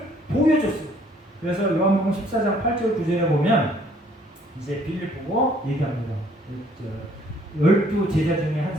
보여줬어요. 그래서 요한복음 14장 8절 9절에 보면 이제 빌립 보고 얘기합니다. 12 제자 중에 한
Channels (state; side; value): normal; both; correlation 0.61